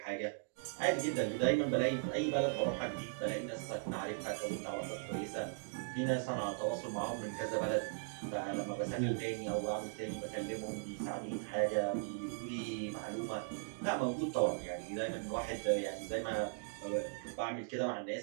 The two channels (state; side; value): silent; left; digital silence